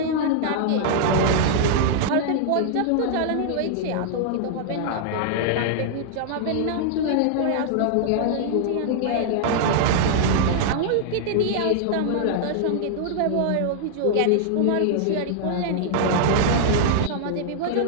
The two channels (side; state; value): both; different; correlation -0.01